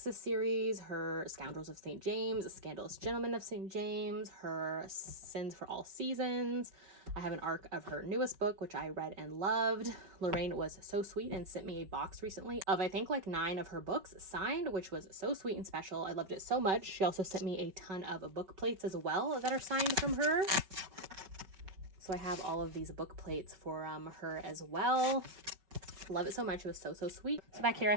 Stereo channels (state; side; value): late; left; 5.3 ms